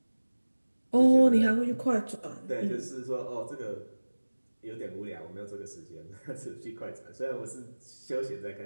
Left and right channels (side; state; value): both; inverted; correlation -1.00